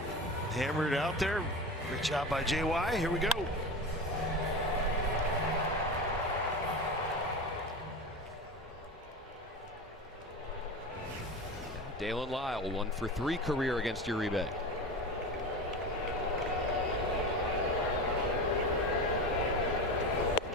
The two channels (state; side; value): normal; both; correlation 0.27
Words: Hammered it out there. Great job by JY. Here we go. Dalen Lyle, 1 for 3 career against Uribe.